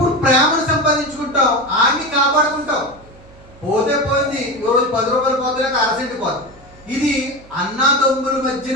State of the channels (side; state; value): right; noise; hum, 24 dB below the sound